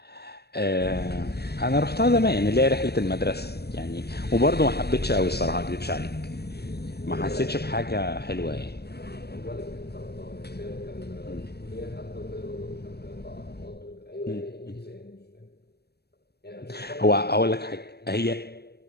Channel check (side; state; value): right; late; 0.47 ms